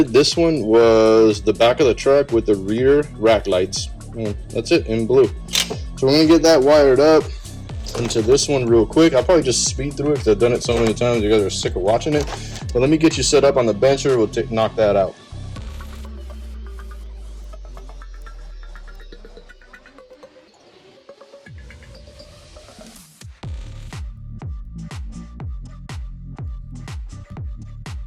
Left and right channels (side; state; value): both; identical; correlation 1.00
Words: this one was the back of the truck with the rear rack lights. And that's it, in blue. So we're gonna get that wired up into this one real quick. I'll probably just speed through it because I've done it so many times you guys are sick of watching it. But let me get you set up on the bencher. We'll knock that out.